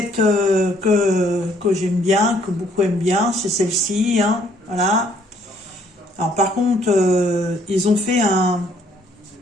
que j'aime bien, que beaucoup aiment bien. C'est celle-ci, hein, voilà. Alors, par contre, ils ont fait un...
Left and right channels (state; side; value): normal; both; correlation 0.65